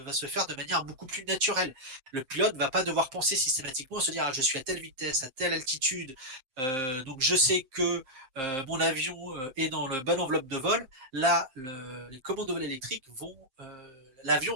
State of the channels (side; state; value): left; late; 7.7 ms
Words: se faire de manière beaucoup plus naturelle. Le pilote va pas devoir penser systématiquement, se dire je suis à telle vitesse, à telle altitude, donc je sais que mon avion est dans le bon enveloppe de vol. Là, les commandes de vol électriques